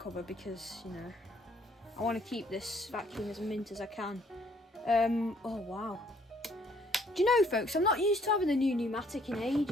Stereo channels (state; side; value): normal; both; correlation 0.64